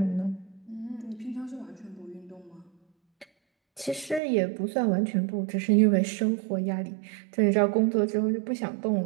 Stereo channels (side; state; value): left; drops out; at 4.2 s